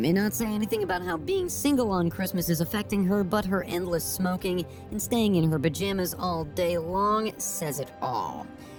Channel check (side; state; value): both; identical; correlation 1.00